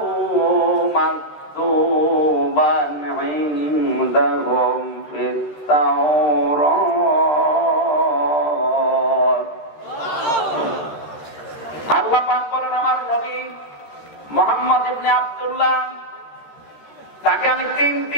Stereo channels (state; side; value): late; right; 13 ms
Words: مكتوبا عندهم في التوراة পাক বলেন আমার নবী মুহাম্মদ ইবনে আব্দুল্লাহ, তাকে আমি